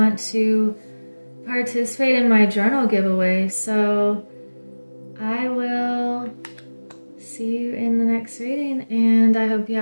to participate in my journal giveaway. So I will see you in the next reading, and I hope you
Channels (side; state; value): both; inverted; correlation -1.00